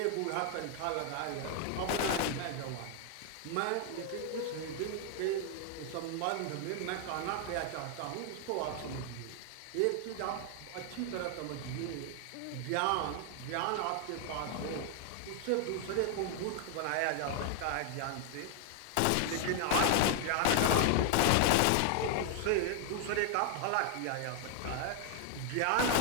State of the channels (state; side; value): different; both; correlation 0.00